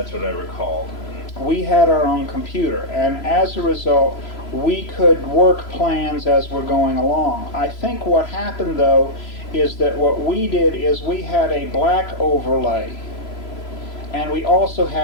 what I recalled. We had our own computer, and as a result, we could work plans as we're going along. I think what happened, though, is that what we did is we had a black overlay, and we also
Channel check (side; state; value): right; late; 3.0 ms